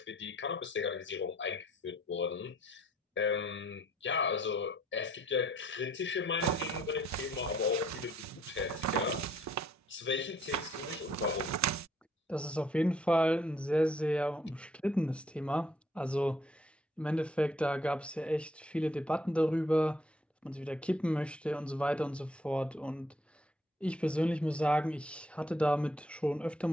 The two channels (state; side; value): normal; both; correlation 0.65